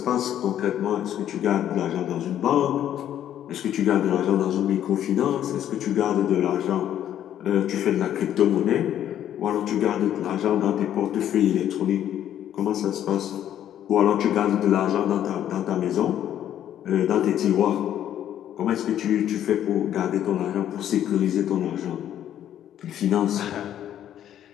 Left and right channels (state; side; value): quieter; right; 10.9 dB